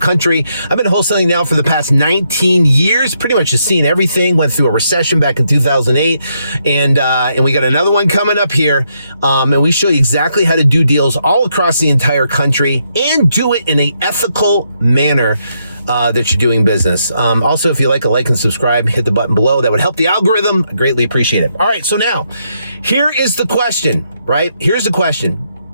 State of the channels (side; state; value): both; inverted; correlation -0.77